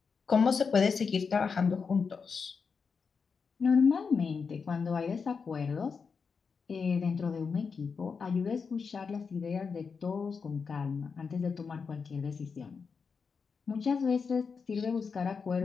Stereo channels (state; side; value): quieter; right; 5.5 dB